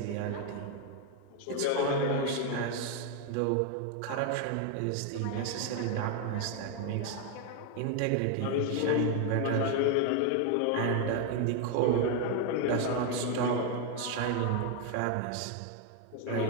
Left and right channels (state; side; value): different; both; correlation 0.01